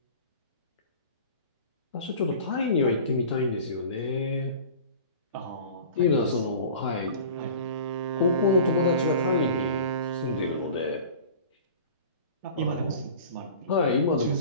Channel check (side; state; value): both; inverted; correlation -0.40